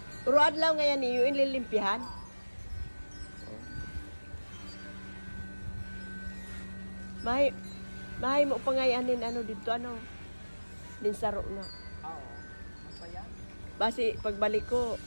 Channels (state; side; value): inverted; both; correlation -1.00